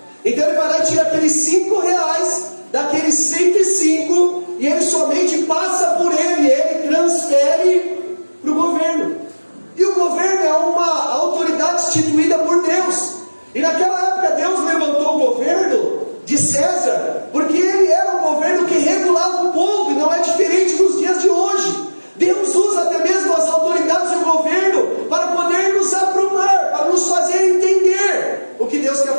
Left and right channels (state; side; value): inverted; both; correlation -1.00